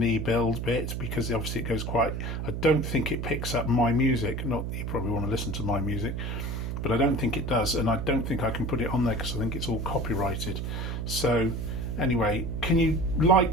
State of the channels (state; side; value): noise; right; hum, 3 dB below the sound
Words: build bit, because obviously it goes quite, I don't think it picks up my music. Not you probably want to listen to my music, but I don't think it does, and I don't think I can put it on there because I think it's all copyrighted. So anyway, can you